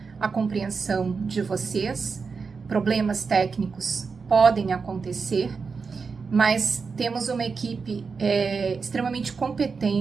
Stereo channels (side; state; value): left; quieter; 5.0 dB